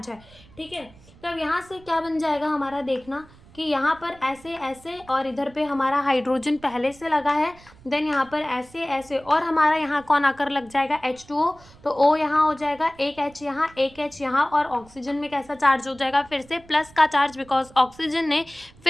है, ठीक है। तो अब यहाँ से क्या बन जाएगा हमारा, देखना कि यहाँ पर ऐसे ऐसे, और इधर पे हमारा हाइड्रोजन पहले से लगा है, देन यहाँ पर ऐसे ऐसे, और हमारा यहाँ कौन आकर लग जाएगा, H2O। तो O यहाँ हो जाएगा, एक H यहाँ, एक H यहाँ, और ऑक्सीजन में कैसा चार्ज हो जाएगा, फिर से प्लस का चार्ज, बिकॉज ऑक्सीजन ने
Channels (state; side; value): noise; right; rumble, 24 dB below the sound